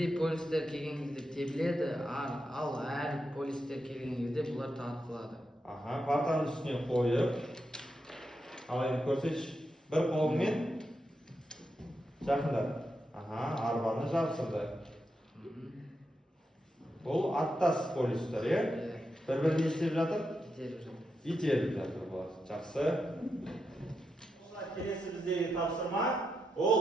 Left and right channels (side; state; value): both; normal; correlation 0.85